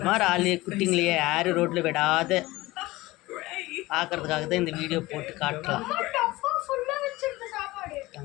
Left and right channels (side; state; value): right; quieter; 19.5 dB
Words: மாதிரி ஆளு குட்டிங்களையே யாரும் ரோட்டில் விடாத பார்க்கறதுக்காக தான் இந்த வீடியோ போட்டு காட்டலாம்.